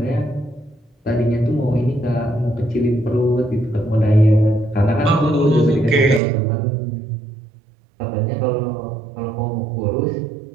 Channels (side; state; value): left; drops out; at 6.2 s